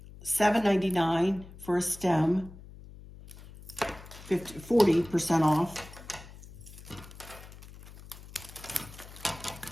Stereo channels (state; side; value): noise; left; hum, 17 dB below the sound